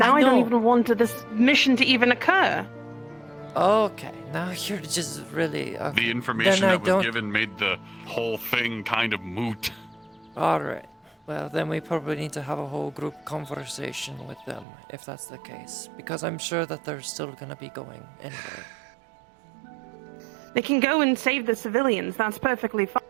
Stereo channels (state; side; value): drops out; left; at 14.7 s